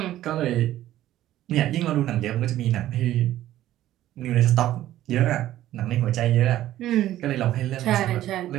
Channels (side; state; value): left; quieter; 13.6 dB